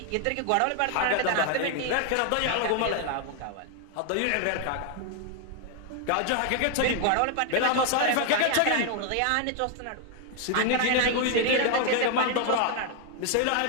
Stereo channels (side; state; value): both; different; correlation 0.00